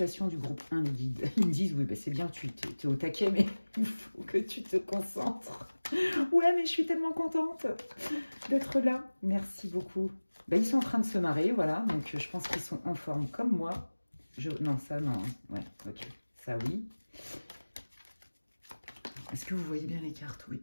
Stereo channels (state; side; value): inverted; both; correlation -1.00